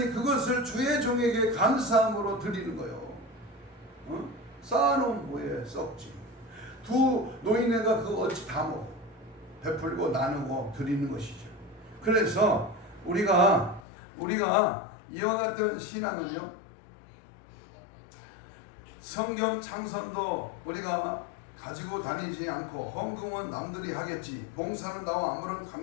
그것을 주의 종에게 감사함으로 드리는 거예요. 쌓아놓은 뭐에 썩지. 두 노인네가 그거 어찌 다 먹어. 베풀고 나누고 드리는 것이죠. 그래서 우리가 이와 같은 신앙은요, 성경 창선도 우리가 가지고 다니지 않고 헌금은 남들이 하겠지, 봉사는 나와 아무런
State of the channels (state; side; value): drops out; right; at 13.8 s